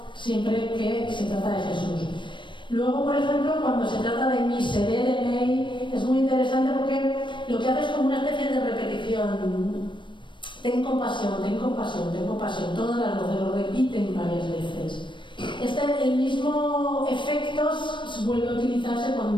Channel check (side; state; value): right; late; 0.23 ms